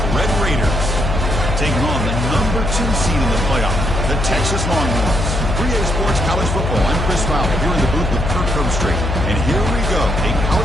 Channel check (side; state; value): left; noise; hum, 1 dB below the sound